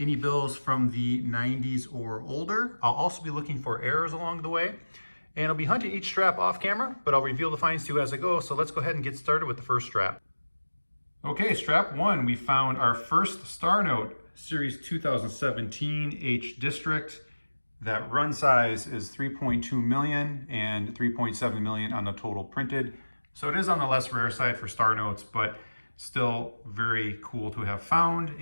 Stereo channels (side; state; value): both; inverted; correlation -1.00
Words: any bills from the 90s or older. I'll also be looking for errors along the way. And I'll be hunting each strap off camera, but I'll reveal the finds to you as I go. So let's go ahead and get started with the first strap. Okay, strap one, we found our first star note, series 2017 H District. That run size is 3.2 million and 3.7 million on the total printed. So it is on the less rare side for star notes, but still very cool to have found.